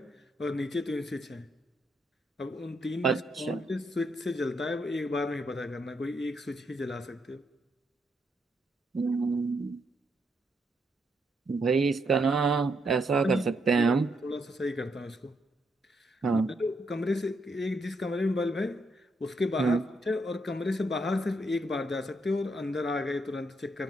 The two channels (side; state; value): both; normal; correlation 0.77